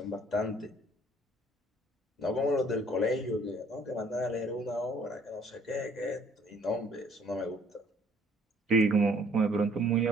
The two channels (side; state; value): both; normal; correlation 0.59